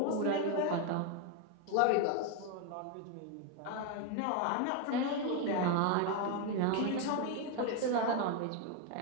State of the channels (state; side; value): different; both; correlation 0.01